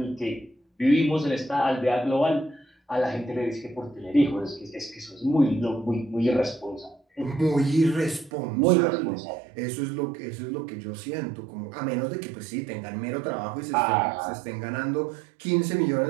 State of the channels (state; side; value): drops out; left; at 8.3 s